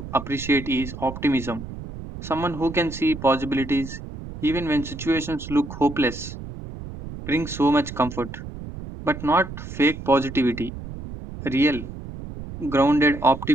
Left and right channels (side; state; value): right; noise; rumble, 11 dB below the sound